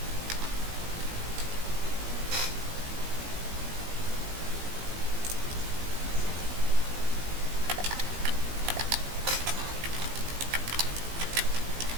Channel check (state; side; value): late; left; 18 ms